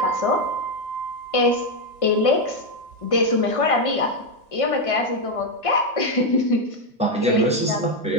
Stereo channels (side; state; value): both; normal; correlation 0.05